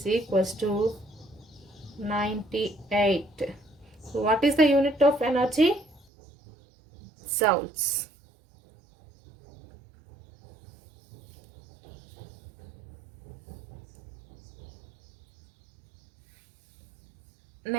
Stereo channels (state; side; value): drops out; left; at 6.1 s